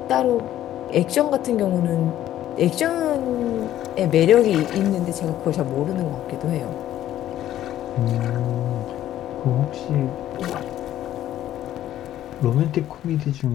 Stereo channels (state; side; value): quieter; right; 12.6 dB